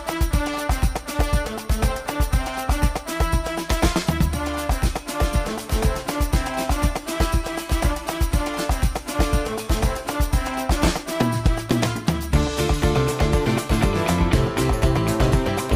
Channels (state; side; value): identical; both; correlation 1.00